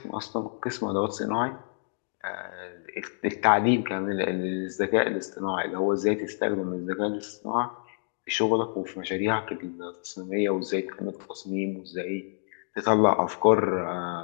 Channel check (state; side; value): silent; right; digital silence